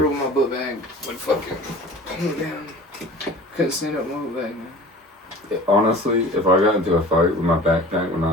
when my book bag would fucking pull me down. Couldn't stand up my book bag, man. Honestly, if I got into a fight with my backpack when I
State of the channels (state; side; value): normal; both; correlation 0.41